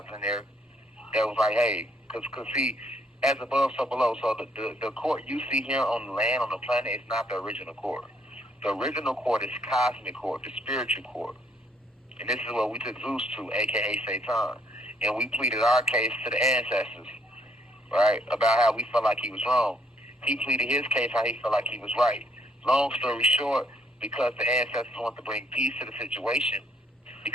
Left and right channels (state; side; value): normal; both; correlation 0.68